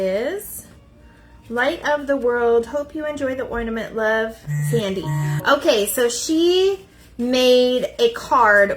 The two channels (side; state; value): both; identical; correlation 1.00